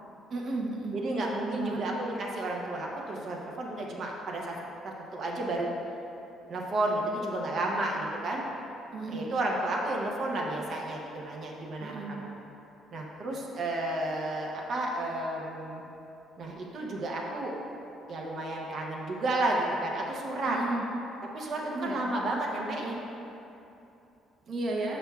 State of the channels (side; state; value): both; normal; correlation 0.71